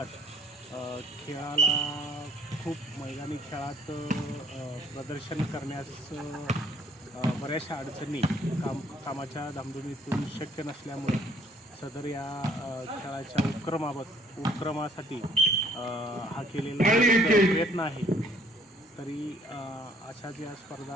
खेळाला खूप मैदानी खेळात प्रदर्शन करण्यास बऱ्याचशा अडचणी कामाच्या धामधुमीतून शक्य नसल्यामुळे सदर या खेळाच्या उपक्रमासाठी हा केलेला प्रयत्न आहे। तरी अशाच या स्पर्धा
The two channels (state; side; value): normal; both; correlation 0.60